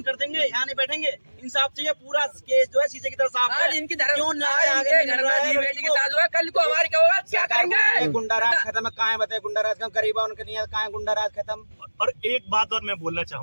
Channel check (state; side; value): inverted; both; correlation -1.00